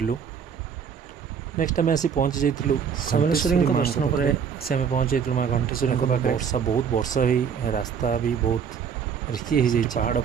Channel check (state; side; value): quieter; left; 7.0 dB